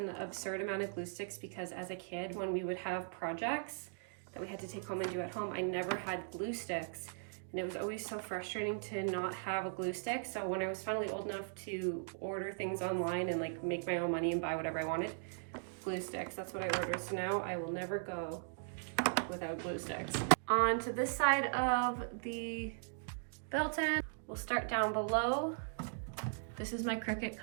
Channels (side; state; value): left; silent; digital silence